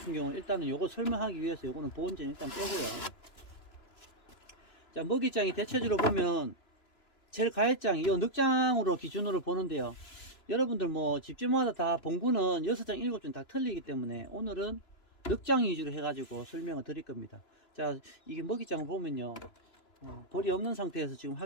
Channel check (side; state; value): right; late; 2.9 ms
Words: 경우는 일단은 요거 설명하기 위해서 요거는 보온전 일단 빼고요. 자, 먹이장이 대체적으로 보면 제일 가해장, 이 늑장으로 기준으로 보는데요. 여러분들 뭐 집집마다 다 봉구는 6장, 7장 다 틀리기 때문에 오늘은 늑장 위주로 해가지고 설명을 드릴 겁니다. 자, 이게 먹이장을 보면요. 벌이 없는 상태에서 지금